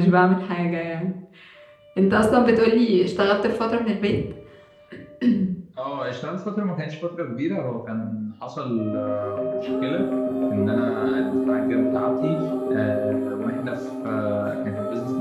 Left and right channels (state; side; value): identical; both; correlation 1.00